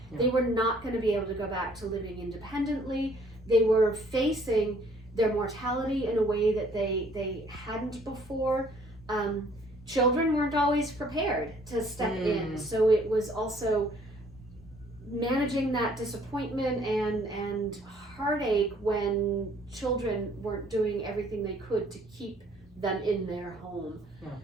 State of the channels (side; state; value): both; normal; correlation 0.60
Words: They were not going to be able to go back to living independently. They were facing their mortality in a way that they hadn't before. Children weren't always prepared to step in, so it was also managing that disappointment and heartache when children weren't doing everything they could to keep them in their home.